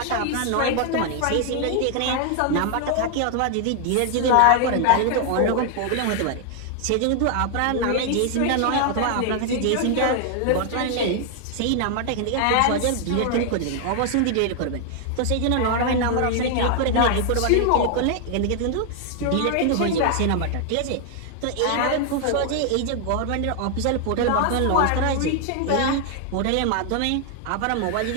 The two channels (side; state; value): both; different; correlation 0.00